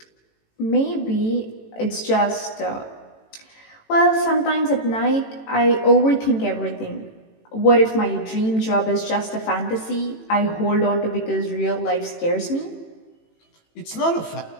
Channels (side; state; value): right; late; 18 ms